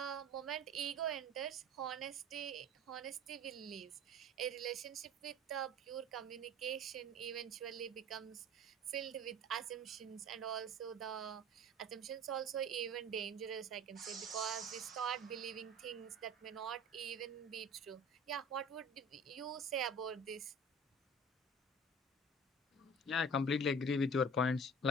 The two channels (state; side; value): normal; both; correlation 0.42